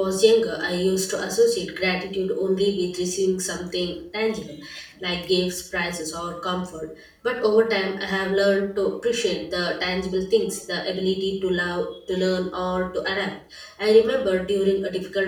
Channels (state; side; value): identical; both; correlation 1.00